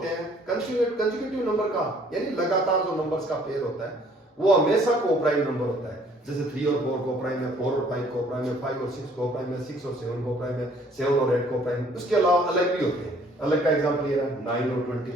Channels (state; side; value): normal; both; correlation 0.59